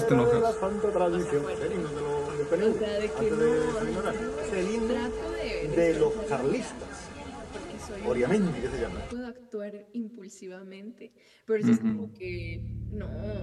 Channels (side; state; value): both; identical; correlation 1.00